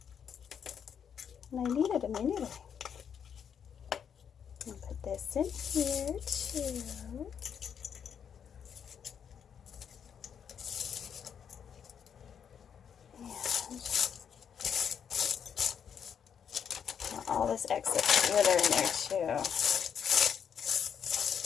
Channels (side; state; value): right; quieter; 7.8 dB